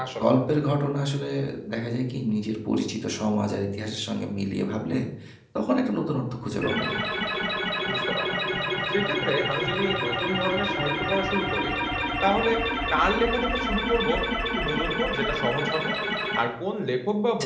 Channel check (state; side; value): identical; both; correlation 1.00